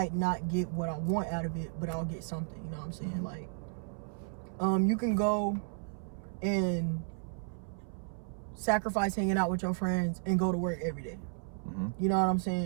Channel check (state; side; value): silent; left; 55 dB below the other